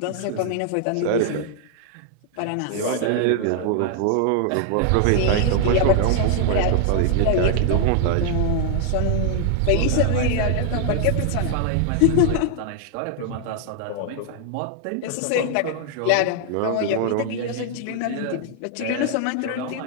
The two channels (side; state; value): both; different; correlation 0.00